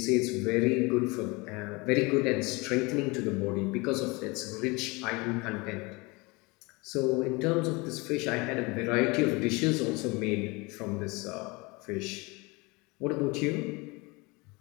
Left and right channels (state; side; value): quieter; right; 25.8 dB